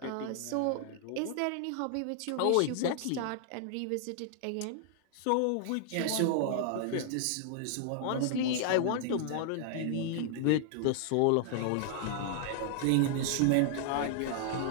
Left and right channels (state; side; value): different; both; correlation -0.01